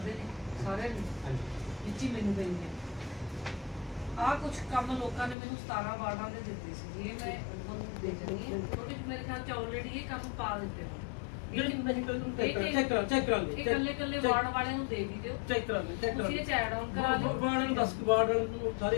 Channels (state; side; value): drops out; right; at 5.4 s